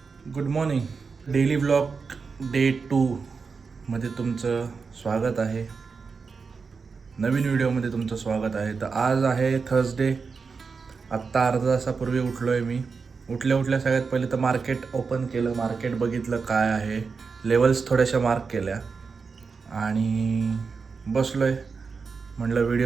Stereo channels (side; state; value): left; quieter; 5.0 dB